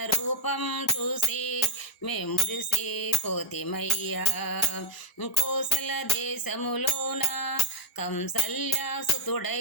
రూపం చూసి మే మురిసిపోతిమయ్యా. కోసల దేశములోన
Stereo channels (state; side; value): normal; both; correlation 0.12